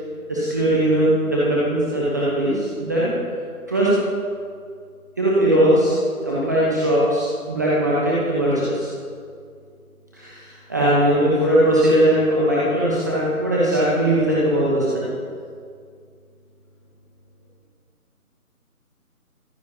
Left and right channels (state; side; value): normal; both; correlation 0.39